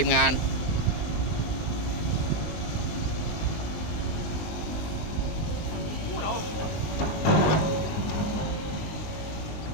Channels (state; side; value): late; right; 19 ms